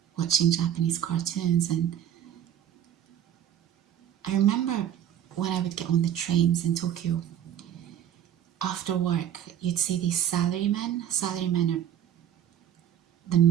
watching Japanese cartoons. And I remember when I would get on the trains in Tokyo, after work, you'd see these salarymen. Salarymen are the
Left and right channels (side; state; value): left; quieter; 10.4 dB